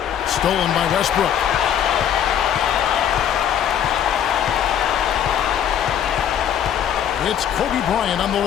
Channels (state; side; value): quieter; right; 9.4 dB